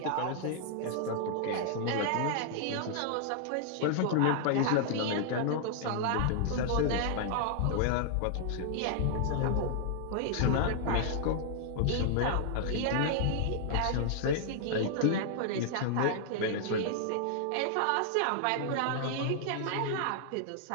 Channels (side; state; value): both; different; correlation -0.01